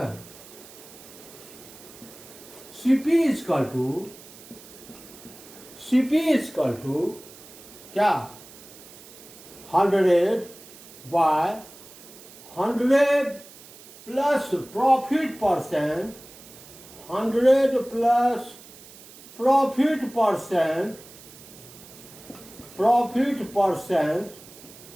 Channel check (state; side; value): noise; right; hiss, 19 dB below the sound